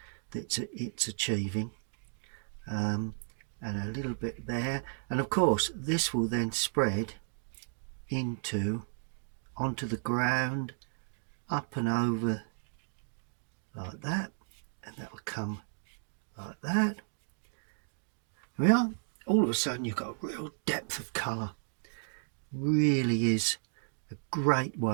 it's achieving. And a little bit there, and of course this will then spread onto the ground, up and over like that, and that'll come like that. Well, all of a sudden you've got a real depth of colour. Really is a great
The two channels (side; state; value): left; silent; digital silence